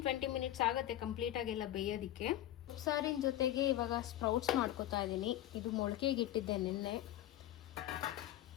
ಮಿನಿಟ್ಸ್ ಆಗುತ್ತೆ ಕಂಪ್ಲೀಟಾಗೆಲ್ಲ ಬೇಯೋದಕ್ಕೆ. ಸಾರಿನ ಜೊತೆಗೆ ಇವಾಗ ಸ್ಪ್ರೌಟ್ಸ್ ಮಾಡ್ಕೊತಾ ಇದ್ದೀನಿ. ಇದು ಮೊಳಕೆಗೆ ಇಟ್ಟಿದ್ದೆ ನಿನ್ನೆ.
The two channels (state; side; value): quieter; right; 13.4 dB